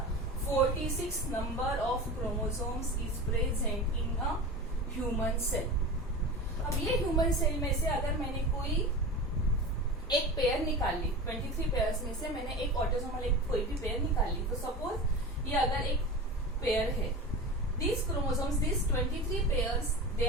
46 number of chromosomes is present in a human cell. अब ये ह्यूमन सेल में से अगर मैंने कोई एक पेयर निकाल ली, 23 पेयर्स में से मैंने एक ऑटोसोमल एक कोई भी पेयर निकाल ली, तो सपोज ये अगर एक पेयर है, these chromosomes, these 23 pairs, they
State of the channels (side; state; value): both; normal; correlation 0.30